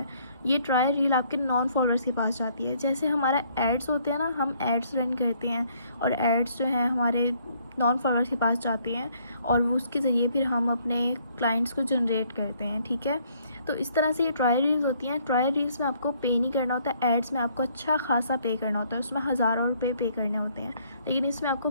ये ट्रायल रील आपके नॉन फॉलोअर्स के पास जाती है। जैसे हमारा एड्स होते हैं ना, हम एड्स रन करते हैं और एड्स जो हैं हमारे नॉन फॉलोअर्स के पास जाते हैं और उसके ज़रिए फिर हम अपने क्लाइंट्स को जनरेट करते हैं। ठीक है। तो इस तरह से ये ट्रायल रील्स होती हैं। ट्रायल रील्स में आपको पे नहीं करना होता, एड्स में आपको अच्छा खासा पे करना होता है, उसमें हज़ारों रुपये पे करने होते हैं, लेकिन इसमें आपको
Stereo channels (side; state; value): both; inverted; correlation -0.65